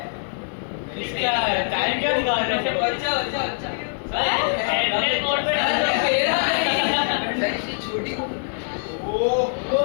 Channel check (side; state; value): right; silent; 63 dB below the other